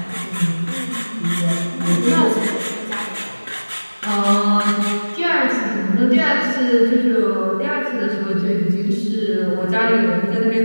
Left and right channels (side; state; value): both; inverted; correlation -1.00